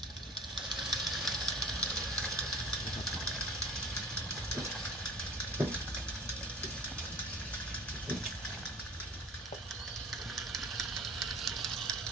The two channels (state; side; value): normal; both; correlation 0.43